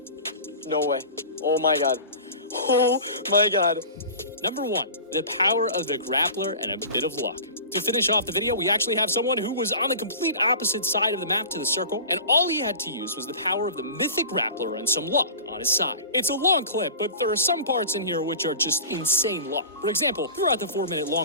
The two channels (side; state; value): both; inverted; correlation -0.37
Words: Oh my god. Number 1, the power of the grappler and a bit of luck. To finish off the video, we actually have someone who was on the complete opposite side of the map to the circle, and all he had to use was the power of the mythic grappler and some luck on his side. It's a long clip, but there are some parts in here which are just insane luck. For example, throughout the 4-minute